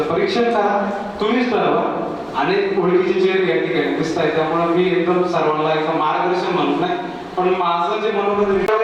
परीक्षण करा, तुम्हीच ठरवा. आणि ओळखीचे चेहरे या ठिकाणी दिसत आहे, त्यामुळे मी एकदम सर्वांना एकदम मार्गदर्शन म्हणत नाही, पण माझं जे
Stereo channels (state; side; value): identical; both; correlation 1.00